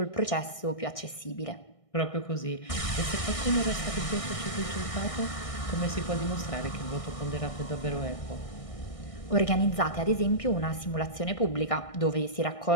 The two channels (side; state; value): right; late; 1.6 ms